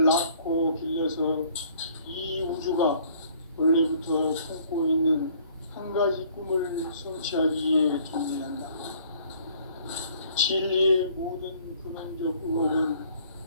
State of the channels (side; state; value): both; inverted; correlation -0.58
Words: 낳고 길러서 이 우주가 원래부터 품고 있는 한 가지 꿈을 성취하기 위해 존재한다. 진리의 모든 근원적 의혹은